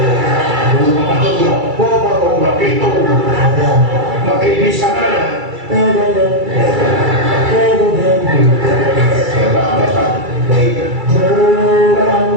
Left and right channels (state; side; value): late; left; 2.3 ms